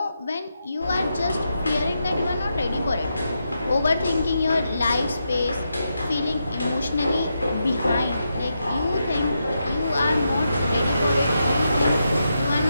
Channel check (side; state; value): both; inverted; correlation -0.85